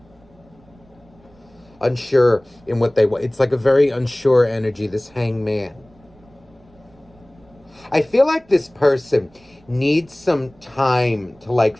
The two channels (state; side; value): noise; right; rumble, 29 dB below the sound